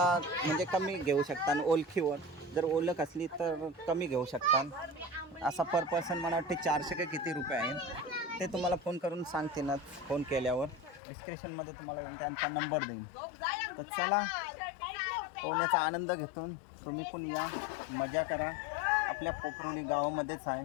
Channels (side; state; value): right; drops out; at 11.0 s